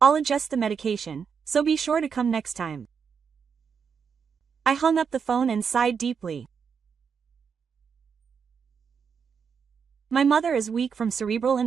I'll adjust the medication, so be sure to come next time. I hung up the phone and sighed deeply. My mother is weak from cerebral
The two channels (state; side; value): quieter; left; 6.5 dB